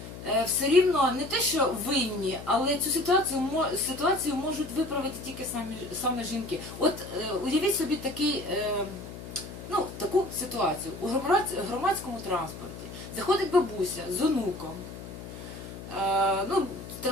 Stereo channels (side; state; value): left; noise; hum, 12 dB below the sound